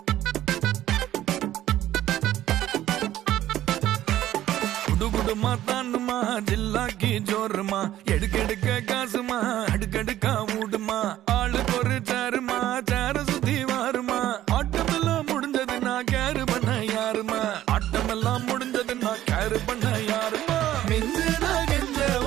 குடுகுடுமா தாண்டுமா ஜில்லாக்கி ஜோருமா எடுக்கெடுக்க காசுமா அடுக்கடுக்கா மூடுமா ஆளுக்கு ஒரு சாருமா சார சுத்தி வாருமா ஆட்டமெல்லாம் முடிஞ்சது நான் கேரு பண்ண யாருமா ஆட்டமெல்லாம் முடிஞ்சது நான் கேரு பண்ண யாருமா மிஞ்சு நான் கெஞ்ச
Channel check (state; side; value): quieter; left; 13.3 dB